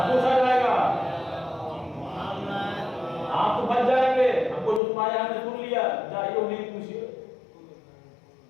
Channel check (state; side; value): drops out; right; at 4.8 s